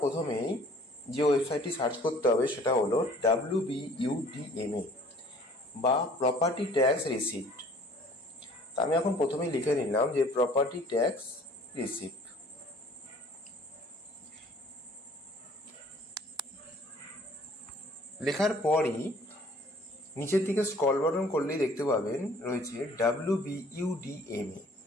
প্রথমেই যে ওয়েবসাইটটি সার্চ করতে হবে সেটা হলো WBUDMA বা প্রপার্টি ট্যাক্স রিসিপ্ট। তা আমি এখন প্রথমেই লিখে নিলাম যে প্রপার্টি ট্যাক্স রিসিপ্ট। লেখার পরই নিচের দিকে স্ক্রল বাটন করলেই দেখতে পাবেন রয়েছে WBUDMA।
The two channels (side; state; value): both; normal; correlation 0.52